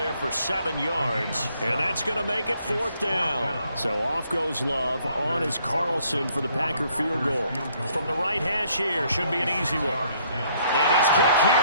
for 7 yards. And that's going to make it 4th down. So off goes Love. On is Carlson for the Packer field goal. From the right hash here, should be an easy one. And his kick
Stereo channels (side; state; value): both; inverted; correlation -0.67